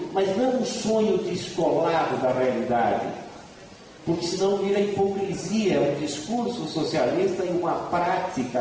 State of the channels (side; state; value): both; identical; correlation 1.00